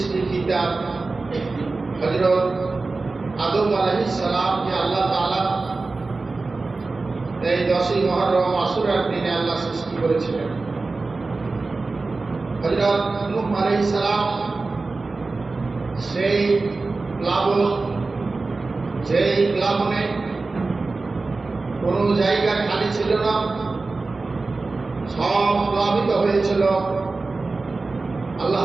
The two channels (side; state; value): left; quieter; 3.7 dB